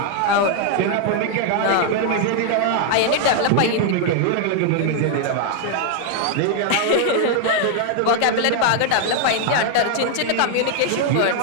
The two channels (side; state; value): both; different; correlation 0.00